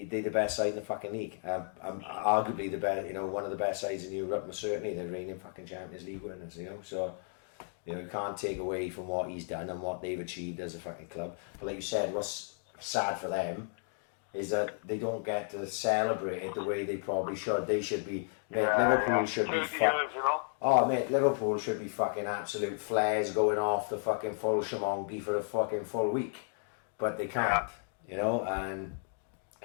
the best side in the fucking league. Arguably the best, you know, one of the best sides in Europe, and certainly the reigning fucking Champions League winners. You know, so. You know, you can't take away from what he's done and what they've achieved as a fucking club. But like you said, what's sad for them is that they don't get to celebrate it the way they probably should. They should be, Liverpool should be Liverpool should be fucking absolute flares going off the fucking full shamongi for a fucking full week. But they can't, you know, and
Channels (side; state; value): right; silent; 55 dB below the other